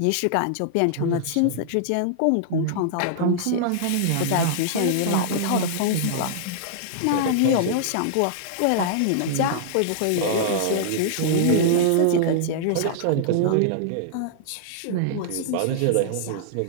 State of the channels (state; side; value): different; both; correlation -0.01